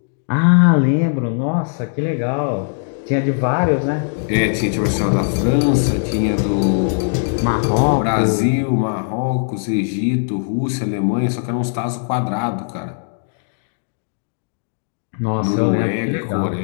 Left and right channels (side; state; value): right; silent; digital silence